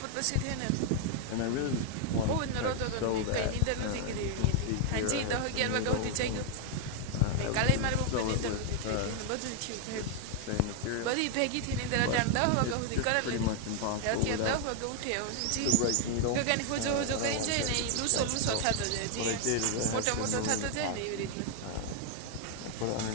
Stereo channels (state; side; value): different; both; correlation 0.00